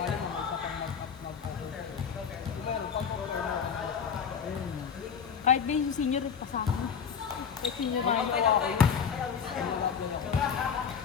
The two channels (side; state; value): right; quieter; 7.0 dB